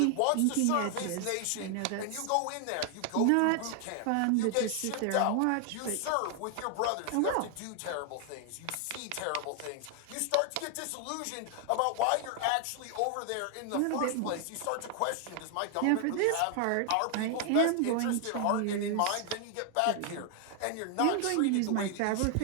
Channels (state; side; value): different; both; correlation 0.00